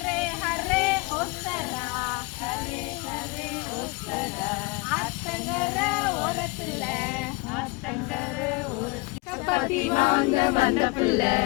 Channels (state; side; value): quieter; right; 25.8 dB